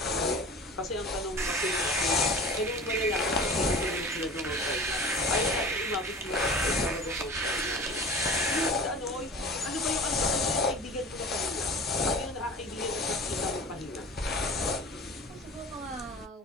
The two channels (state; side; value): normal; both; correlation 0.38